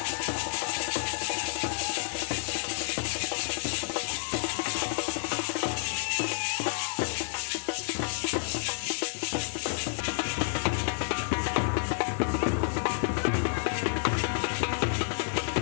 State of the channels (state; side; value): silent; right; digital silence